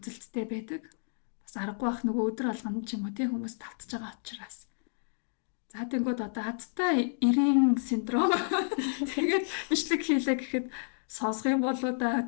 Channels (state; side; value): silent; right; digital silence